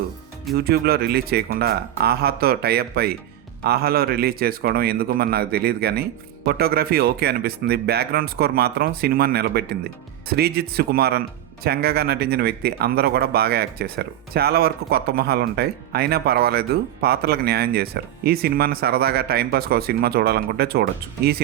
యూట్యూబ్లో రిలీజ్ చేయకుండా ఆహాతో టైఅప్ అయి ఆహాలో రిలీజ్ చేసుకోవడం ఎందుకు మరి నాకు తెలియదు, కానీ ఫోటోగ్రఫీ ఓకే అనిపిస్తుంది. బ్యాక్గ్రౌండ్ స్కోర్ మాత్రం సినిమాని నిలబెట్టింది. శ్రీజిత్ సుకుమారన్ చెంగగా నటించిన వ్యక్తి అందరూ కూడా బాగా యాక్ట్ చేశారు. చాలా వరకు కొత్త మొహాలు ఉంటాయి, అయినా పర్వాలేదు, పాత్రలకు న్యాయం చేశారు. ఈ సినిమాని సరదాగా టైంపాస్కి ఒక సినిమా చూడాలనుకుంటే చూడొచ్చు. ఈ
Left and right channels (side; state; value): left; quieter; 12.2 dB